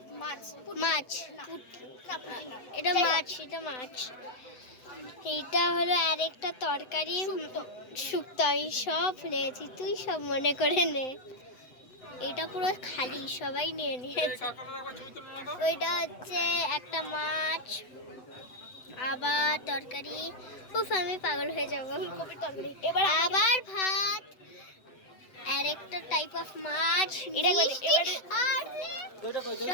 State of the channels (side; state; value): right; late; 7.9 ms